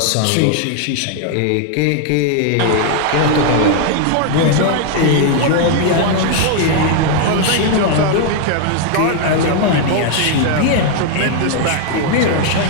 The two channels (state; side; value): different; both; correlation 0.00